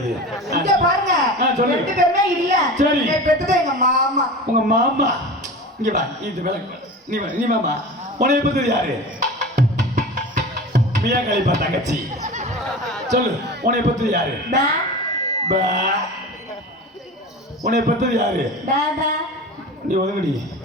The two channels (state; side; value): normal; both; correlation 0.32